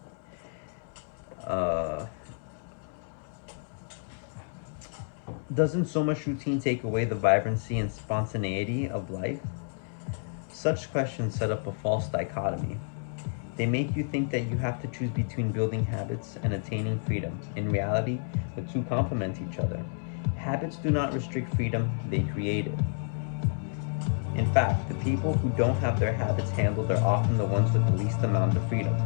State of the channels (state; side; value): silent; right; 58 dB below the other